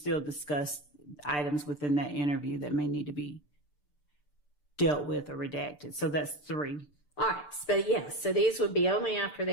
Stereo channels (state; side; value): late; right; 6.8 ms